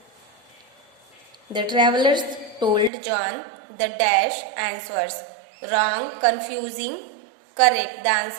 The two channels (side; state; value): left; drops out; at 2.9 s